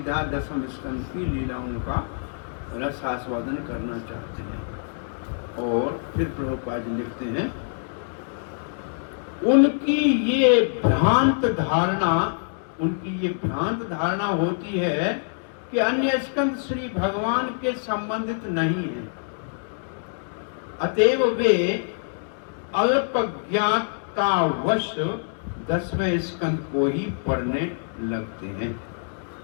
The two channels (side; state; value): right; silent; digital silence